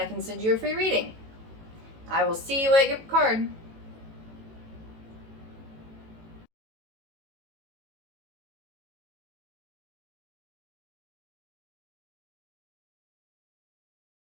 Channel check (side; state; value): left; late; 18 ms